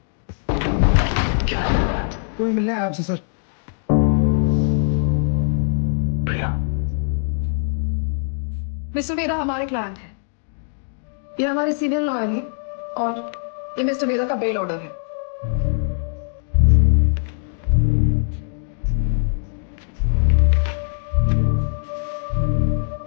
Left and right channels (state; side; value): silent; right; digital silence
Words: क्या कोई मिलना है आपसे सर? प्रिया, मिस्टर वेदा हमारे क्लाइंट है, ये हमारे सीनियर लॉयर है और ये मिस्टर वेदा का बेल ऑर्डर है।